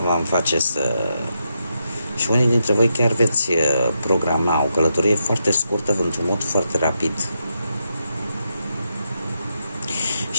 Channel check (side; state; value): both; inverted; correlation -0.83